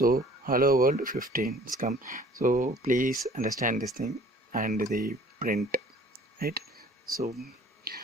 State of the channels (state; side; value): normal; both; correlation 0.52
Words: hello world 15 is come. So please understand this thing and the print, right? So